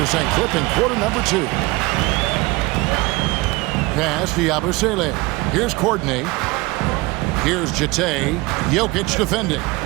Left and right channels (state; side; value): quieter; left; 22.3 dB